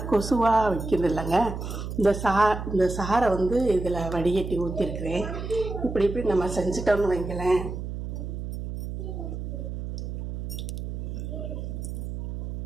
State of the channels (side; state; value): right; noise; hum, 6 dB below the sound